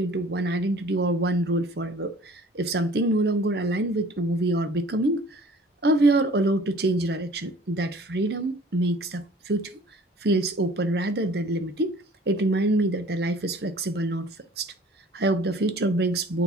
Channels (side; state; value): both; normal; correlation 0.50